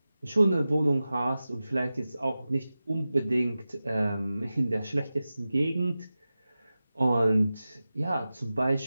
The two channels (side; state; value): both; inverted; correlation -0.95